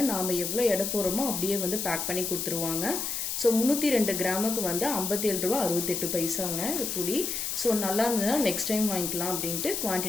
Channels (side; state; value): left; noise; hiss, 2 dB below the sound